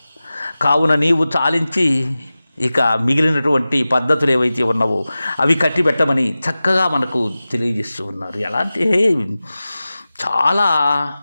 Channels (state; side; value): inverted; both; correlation -0.96